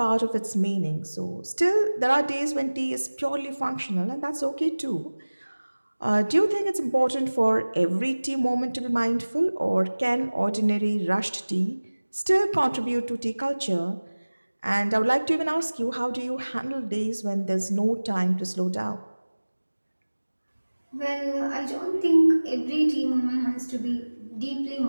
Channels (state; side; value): inverted; both; correlation -1.00